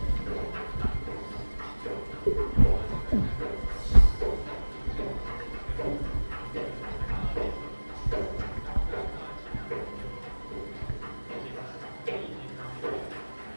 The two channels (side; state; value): both; inverted; correlation -1.00